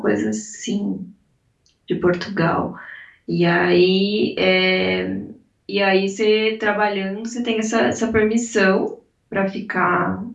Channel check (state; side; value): identical; both; correlation 1.00